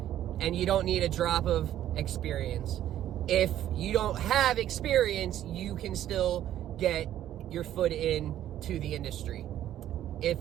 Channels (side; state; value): left; quieter; 11.9 dB